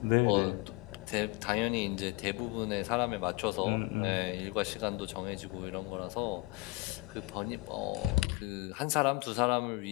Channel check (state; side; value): quieter; right; 23.1 dB